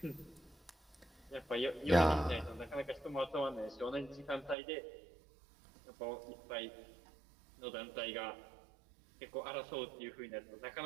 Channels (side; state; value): left; drops out; at 4.5 s